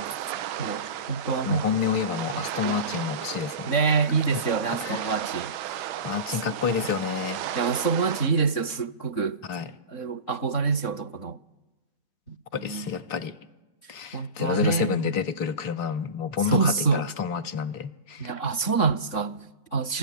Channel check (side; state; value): right; late; 3.6 ms